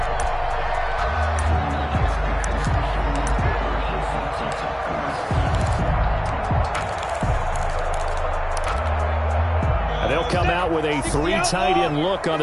They'll come out with a 3 tight end look on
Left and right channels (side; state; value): both; identical; correlation 1.00